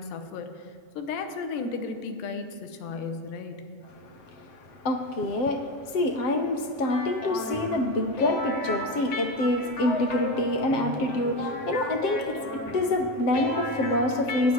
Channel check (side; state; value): right; late; 7.7 ms